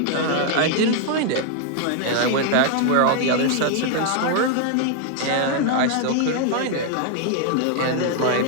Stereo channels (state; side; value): different; both; correlation 0.00